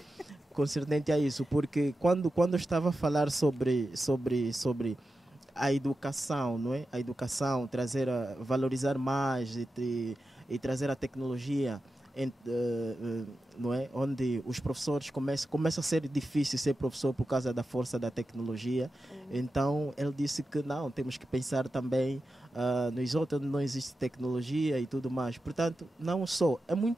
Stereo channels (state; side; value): normal; both; correlation 0.91